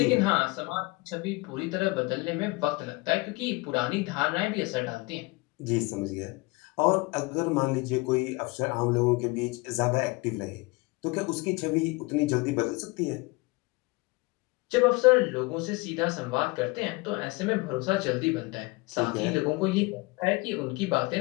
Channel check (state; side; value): quieter; right; 24.6 dB